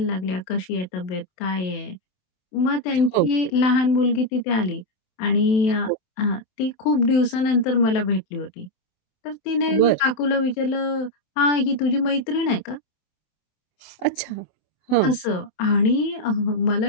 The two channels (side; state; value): right; late; 27 ms